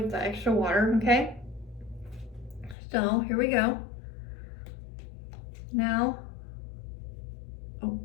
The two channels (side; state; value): right; drops out; at 2.8 s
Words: the extra water, okay? So here we go. Now, oh,